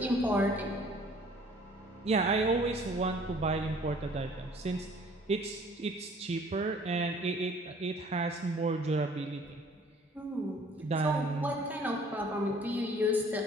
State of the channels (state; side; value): normal; both; correlation 0.55